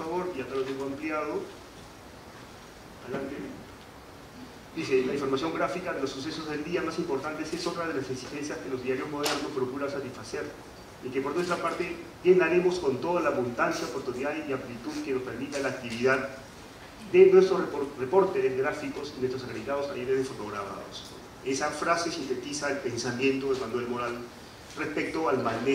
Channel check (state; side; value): identical; both; correlation 1.00